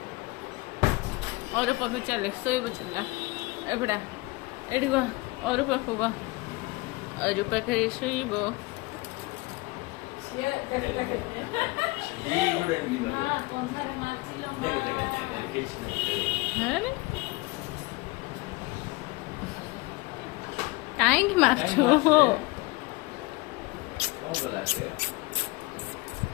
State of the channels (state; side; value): quieter; right; 23.4 dB